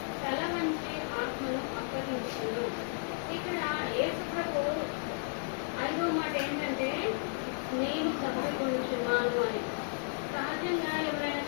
తల వంచి ఆత్మను అప్పగించును. ఇక్కడ యేసు ప్రభు 5వ మాట ఏంటంటే నేను తప్పికొనుచున్నాను అని. సహజంగా ఎవరైనా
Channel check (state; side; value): silent; right; digital silence